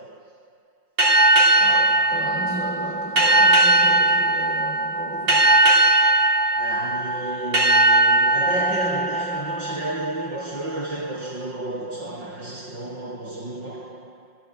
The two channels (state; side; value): late; left; 5.6 ms